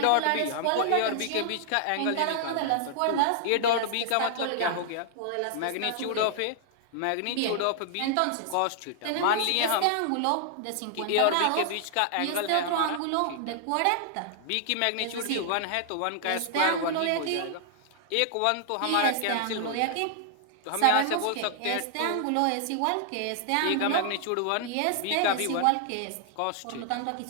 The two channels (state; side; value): different; both; correlation -0.01